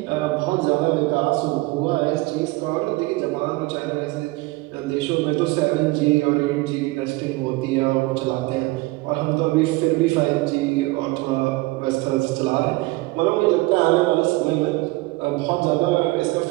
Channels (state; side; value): quieter; left; 22.1 dB